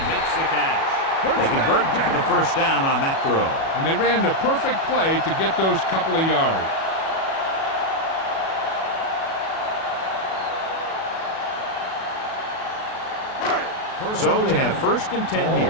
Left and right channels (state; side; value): late; right; 37 ms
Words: makes the catch. They convert for the first down on that throw. And they ran the perfect play to get those couple of yards. So they have first and 10 here.